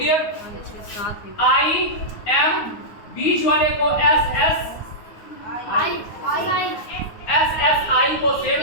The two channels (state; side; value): late; right; 9.5 ms